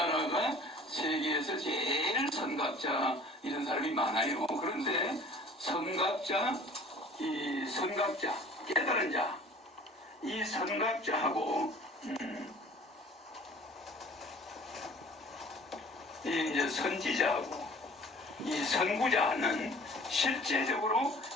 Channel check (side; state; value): both; normal; correlation 0.48